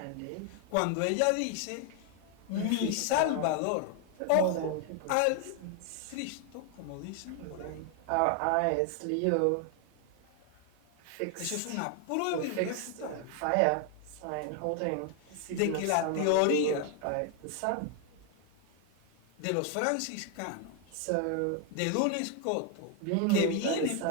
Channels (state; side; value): different; both; correlation 0.00